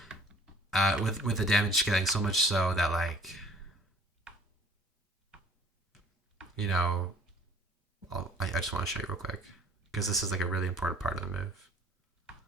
with the damage scaling so much so that like I just want to show you real quick because this is like a really important part of the move.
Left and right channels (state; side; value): normal; both; correlation 0.54